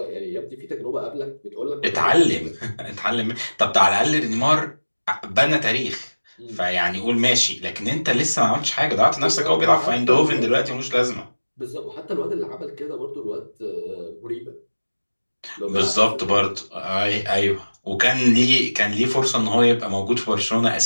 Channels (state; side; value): inverted; both; correlation -1.00